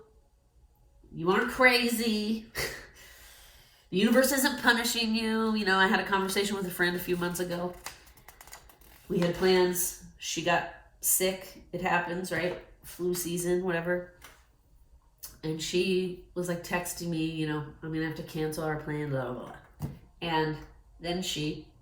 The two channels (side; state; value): both; identical; correlation 1.00